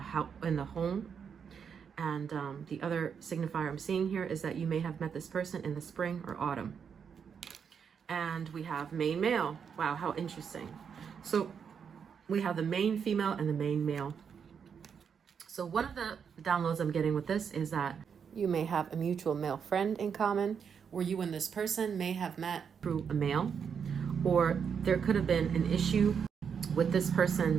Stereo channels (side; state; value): left; quieter; 6.9 dB